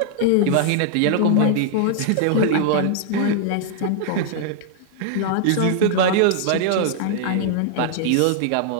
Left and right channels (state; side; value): different; both; correlation -0.01